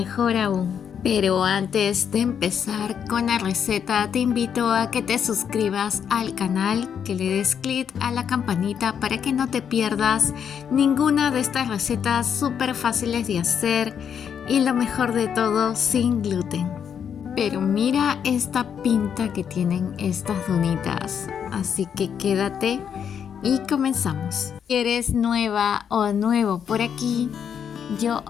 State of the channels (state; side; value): quieter; right; 7.9 dB